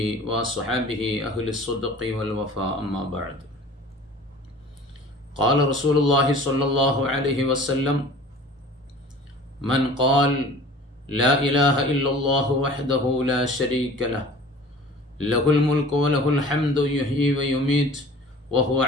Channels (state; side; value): normal; both; correlation 0.45